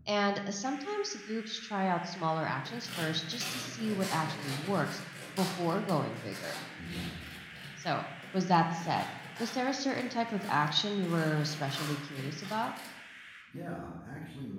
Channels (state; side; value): identical; both; correlation 1.00